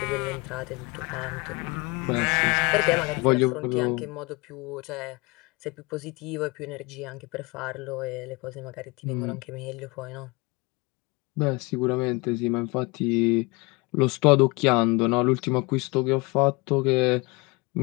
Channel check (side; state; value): right; quieter; 26.5 dB